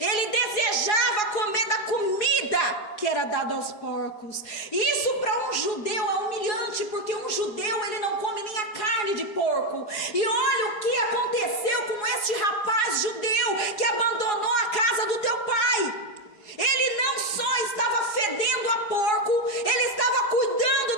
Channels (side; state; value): right; late; 4.8 ms